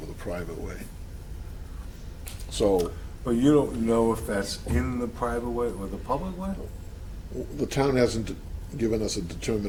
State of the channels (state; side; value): identical; both; correlation 1.00